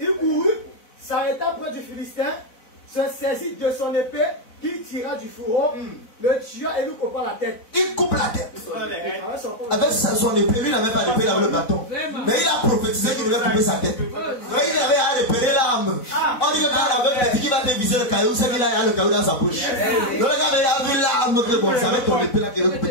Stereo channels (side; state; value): right; late; 4.0 ms